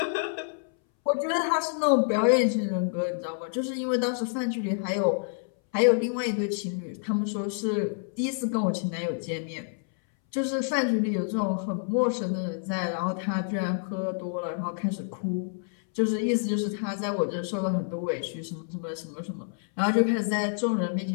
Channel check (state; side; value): silent; right; 59 dB below the other